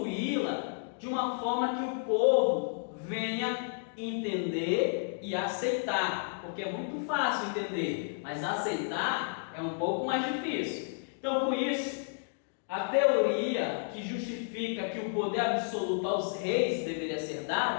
de uma forma que o povo venha entender e aceitar, porque é muito fácil entender, mas aceitar é um pouco mais difícil. Então, com isso, a teoria que justifica que o poder absoluto aos reis deveria ser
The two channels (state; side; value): silent; right; digital silence